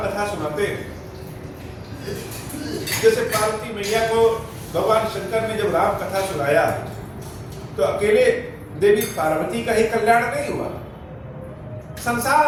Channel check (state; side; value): identical; both; correlation 1.00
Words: सुनाते हैं, जैसे पार्वती मैया को भगवान शंकर ने जब राम कथा सुनाया तो अकेले देवी पार्वती का ही कल्याण नहीं हुआ,